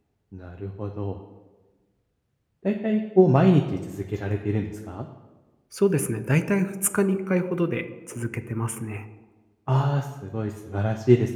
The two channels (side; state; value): both; identical; correlation 1.00